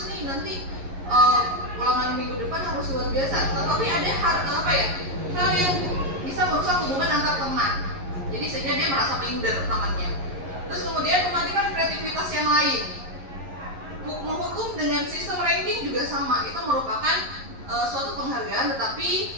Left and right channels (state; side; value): late; left; 11 ms